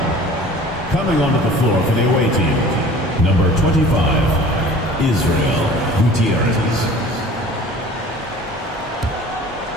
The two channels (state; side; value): normal; both; correlation 0.45